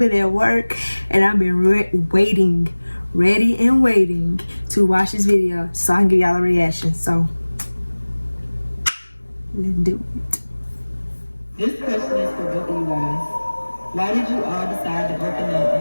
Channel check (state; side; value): inverted; both; correlation -1.00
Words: at work and I've been waiting, ready and waiting to watch this video so I can give y'all a reaction. So let's do it. This question is for both of you guys. Why did you all decide to open up